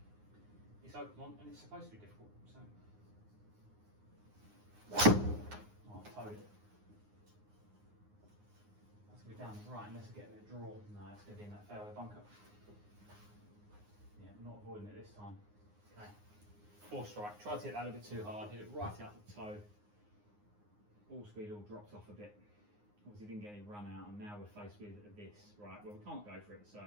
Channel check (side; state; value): left; late; 9.7 ms